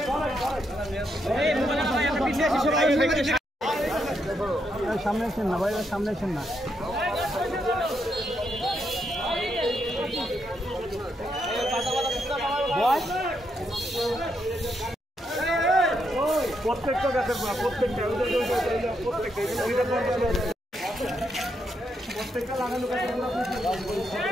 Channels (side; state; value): both; normal; correlation 0.79